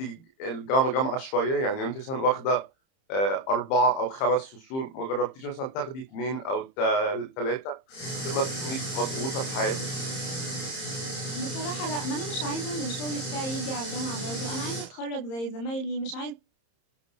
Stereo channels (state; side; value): late; right; 30 ms